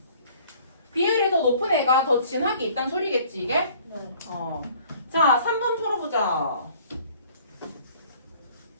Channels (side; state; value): both; inverted; correlation -0.54